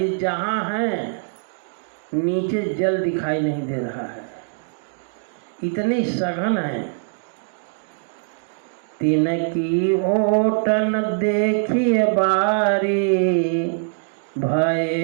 जहाँ हैं नीचे जल दिखाई नहीं दे रहा है, इतनी सघन है। तिनकी ओटन देखिए बारी,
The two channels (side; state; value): left; silent; digital silence